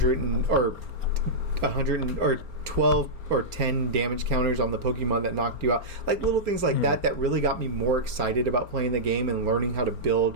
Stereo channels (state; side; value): late; left; 4.4 ms